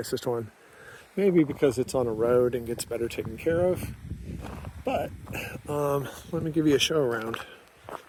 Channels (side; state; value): both; identical; correlation 1.00